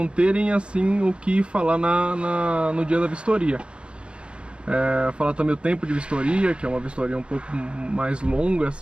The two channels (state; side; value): late; left; 0.056 ms